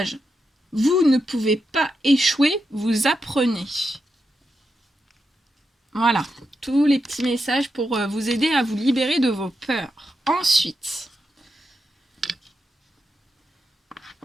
Vous ne pouvez pas échouer, vous apprenez. Voilà, tous les petits messages pour vous aider à vous libérer de vos peurs. Ensuite,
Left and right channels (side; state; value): both; normal; correlation 0.86